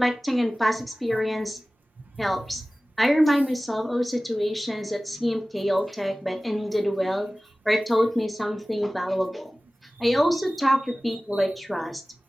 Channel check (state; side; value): normal; both; correlation 0.97